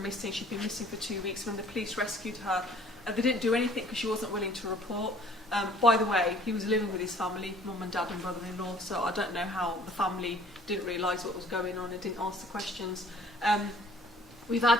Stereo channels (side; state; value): both; normal; correlation 0.54